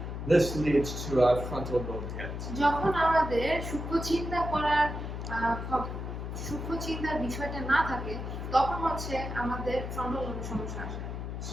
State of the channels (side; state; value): left; noise; hum, 6 dB below the sound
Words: This leads to a frontal lobe hit. যখন আমাদের সূক্ষ্ম চিন্তার বিষয়টা না থাকে, তখন হচ্ছে আমাদের ফ্রন্টাল লোবের সমস্যা আসে।